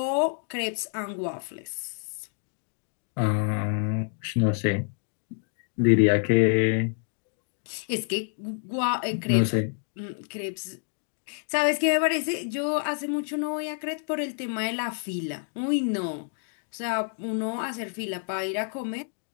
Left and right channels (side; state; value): right; silent; 59 dB below the other